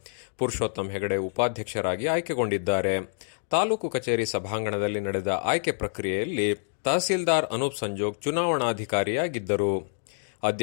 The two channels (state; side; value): silent; right; digital silence